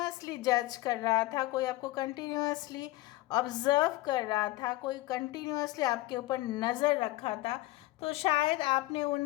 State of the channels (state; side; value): quieter; right; 18.2 dB